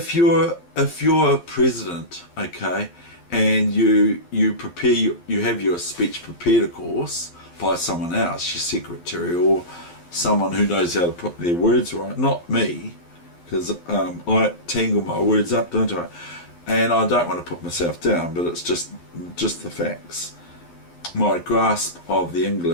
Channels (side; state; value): right; late; 12 ms